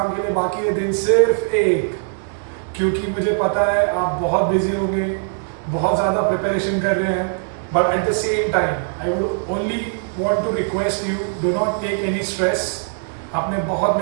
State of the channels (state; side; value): silent; left; digital silence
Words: के लिए बाकी है दिन सिर्फ एक, क्योंकि मुझे पता है आप बहुत बिजी होंगे, बहुत ज्यादा प्रिपरेशन कर रहे हैं. But at the same time I would only want to request you, do not take any stress. आपने बहुत